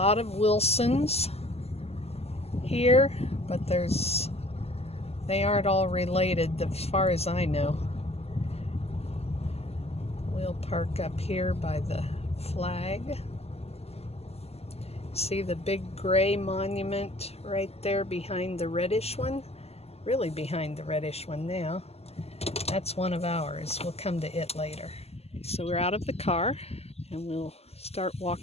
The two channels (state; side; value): late; right; 0.30 ms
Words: of Wilsons here, but they aren't all related as far as I know. We'll park up here by the flag. See the big gray monument right there behind the reddish one? Really behind the reddish one now. That's one of ours. We'll come to it later. So we're out of the car and we'll start